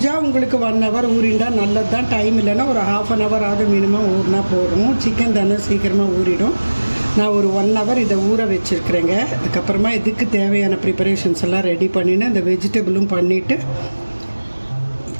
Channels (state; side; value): inverted; both; correlation -1.00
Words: உங்களுக்கு 1 hour ஊறிண்டா நல்லது தான். டைம் இல்லைன்னா ஒரு ½ an hour ஆகுது மினிமம் ஊறினா போதும். சிக்கன் தானே சீக்கிரமாக ஊறிடும். நான் ஒரு 1 hour இதை ஊற வச்சுருக்கிறேங்க. அதுக்கப்புறமா இதுக்கு தேவையான ப்ரிப்பரேஷன்ஸ் எல்லாம் ரெடி பண்ணிவிட்டு இந்த வெஜிடபிளும் பண்ணிவிட்டு